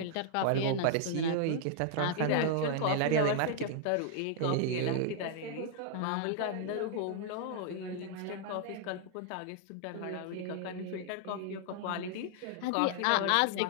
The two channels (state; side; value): different; both; correlation 0.00